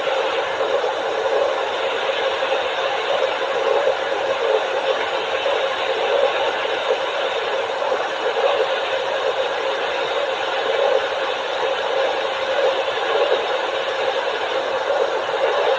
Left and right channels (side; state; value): both; identical; correlation 1.00